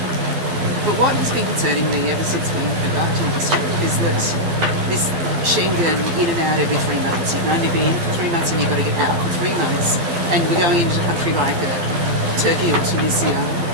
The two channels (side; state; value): left; late; 12 ms